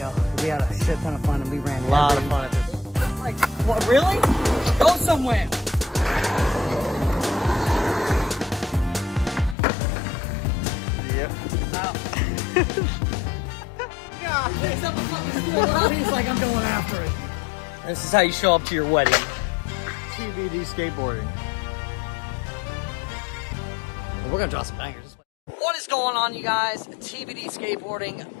We had a shit ton of fun and we ran a lot of fun at this. Like, what, really? Go somewhere. Yep. Wow. Picks up a fucking stool out, he's like, I'm going after it. This is how you show up to your wedding. TBD skateboarding. We're gonna draw some bangers. What is going on, you guys? TBD Skateboarding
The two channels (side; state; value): right; drops out; at 9.6 s